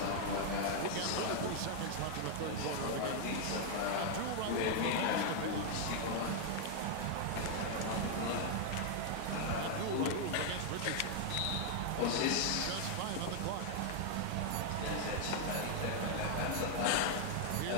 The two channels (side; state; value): both; different; correlation 0.00